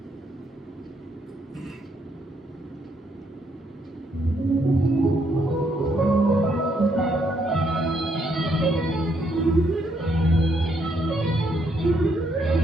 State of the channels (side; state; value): both; normal; correlation 0.73